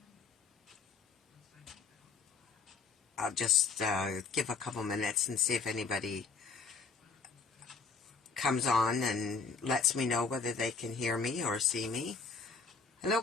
I'll just give a couple minutes and see if anybody comes on and lets me know whether they can hear me or see me. Hello,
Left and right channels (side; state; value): right; quieter; 4.9 dB